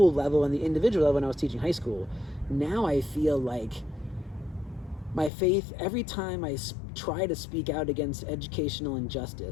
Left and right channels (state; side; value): drops out; right; at 5.3 s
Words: level and the individual level when I was teaching high school. Now I feel like my faith, every time I try to speak out against educational